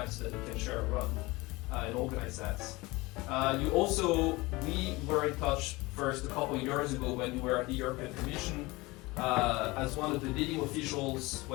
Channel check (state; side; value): quieter; right; 22.4 dB